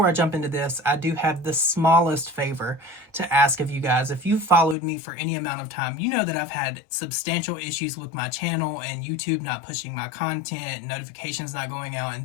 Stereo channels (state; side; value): drops out; right; at 4.8 s